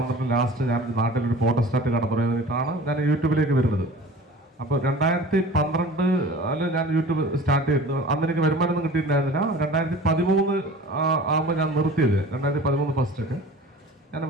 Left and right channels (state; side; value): normal; both; correlation 0.41